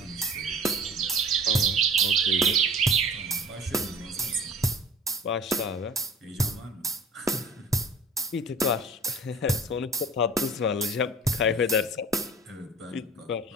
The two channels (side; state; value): both; normal; correlation 0.44